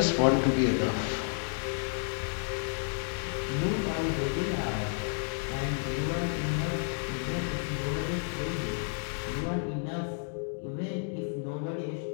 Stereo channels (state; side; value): silent; right; 57 dB below the other